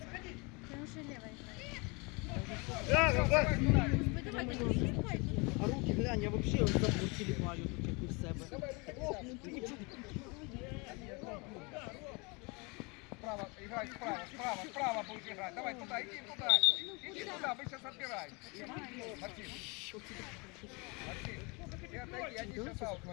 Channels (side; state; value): right; quieter; 29.1 dB